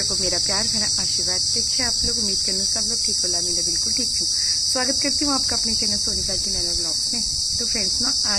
को मेरा प्यार भरा आशीर्वाद। देखिए आप लोग, उम्मीद करना सब लोग ठीक होला। मैं बिल्कुल ठीक हूँ। स्वागत करती हूँ आपका अपने चैनल सोनिका की नैना ब्लॉग्स में। तो फ्रेंड्स ना,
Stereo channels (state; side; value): identical; both; correlation 1.00